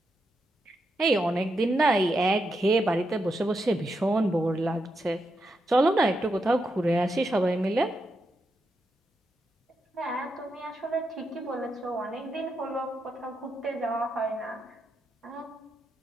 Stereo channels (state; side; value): normal; both; correlation 0.84